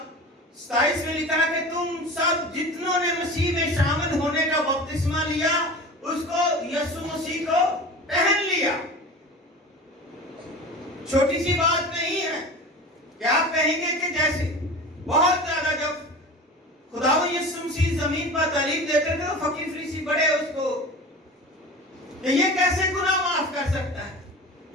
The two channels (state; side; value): normal; both; correlation 0.35